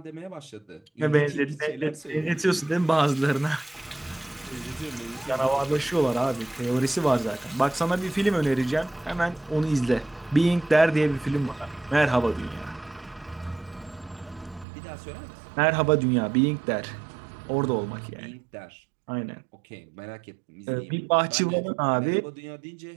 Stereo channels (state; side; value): drops out; left; at 14.7 s